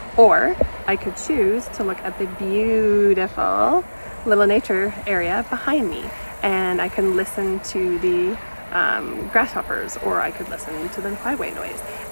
or I could choose to look at the beautiful little nature area behind me, and I can listen to the grasshoppers, or I could listen to the highway noise,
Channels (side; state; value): both; inverted; correlation -1.00